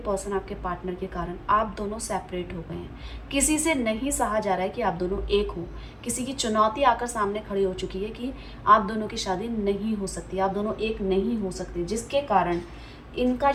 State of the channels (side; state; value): both; identical; correlation 1.00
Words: आपके पार्टनर के कारण आप दोनों सेपरेट हो गए हैं। किसी से नहीं सहा जा रहा है कि आप दोनों एक हो। किसी की चुनौती आकर सामने खड़ी हो चुकी है कि आप दोनों की शादी नहीं हो सकती, आप दोनों एक नहीं हो सकते, जिसके कारण इनका